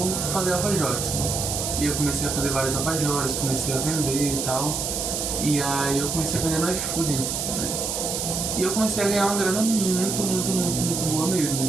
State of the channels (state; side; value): noise; right; hiss, 2 dB below the sound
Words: fazer alfajores, né? E eu comecei a fazer vários alfajores, comecei a vender e tal. E aí eu comecei a vender no iFood, né? E eu comecei a ganhar uma grana muito boa mesmo,